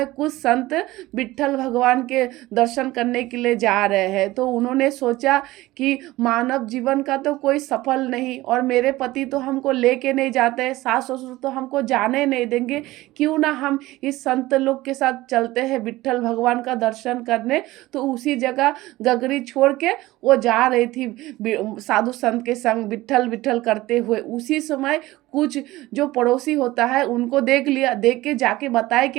कुछ संत विट्ठल भगवान के दर्शन करने के लिए जा रहे हैं। तो उन्होंने सोचा कि मानव जीवन का तो कोई सफल नहीं, और मेरे पति तो हमको लेके नहीं जाते, सास ससुर तो हमको जाने नहीं देंगे, क्यों ना हम इस संत लोग के साथ चलते हैं विट्ठल भगवान का दर्शन करने। तो उसी जगह गगरी छोड़ के वो जा रही थी साधु संत के संग विट्ठल विट्ठल करते हुए। उसी समय कुछ जो पड़ोसी होता है उनको देख लिया, देख के जाके बताए कि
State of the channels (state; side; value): quieter; left; 18.1 dB